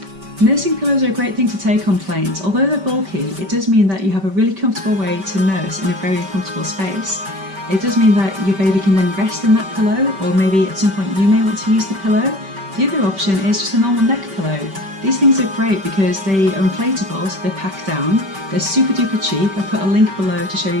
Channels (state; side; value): late; left; 5.2 ms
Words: Nursing pillows are a great thing to take on planes. Although they're bulky, it does mean that you have a really comfortable way to nurse in a very uncomfortable space. It does mean that your baby can then rest in that pillow, or maybe at some point you may want to use the pillow. The other option is just a normal neck pillow. These things are great because they are inflatable, so they're packed down. They're super duper cheap. I've put a link below to show